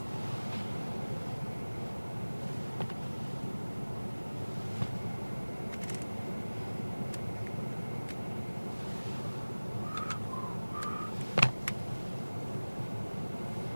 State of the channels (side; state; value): both; inverted; correlation -1.00